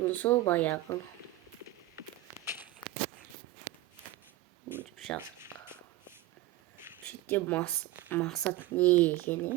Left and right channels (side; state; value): left; quieter; 16.0 dB